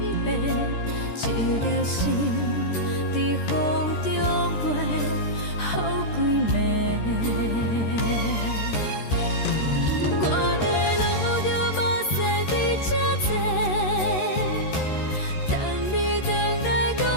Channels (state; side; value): late; right; 13 ms